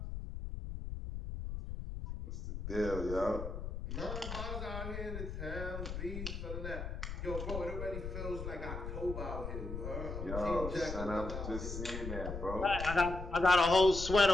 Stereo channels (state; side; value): noise; left; rumble, 6 dB below the sound